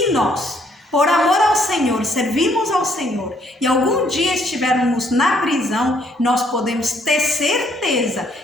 nós, por amor ao Senhor, servimos ao Senhor e algum dia estivermos na prisão, nós podemos ter certeza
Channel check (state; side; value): normal; both; correlation 0.67